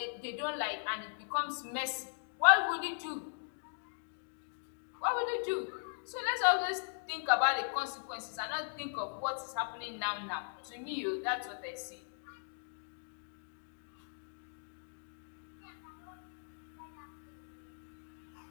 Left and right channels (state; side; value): silent; right; digital silence